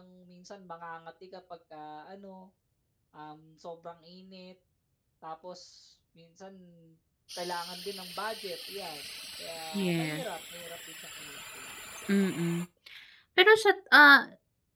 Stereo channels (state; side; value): identical; both; correlation 1.00